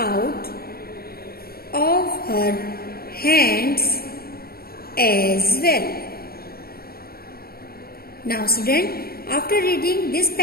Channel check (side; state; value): right; late; 0.44 ms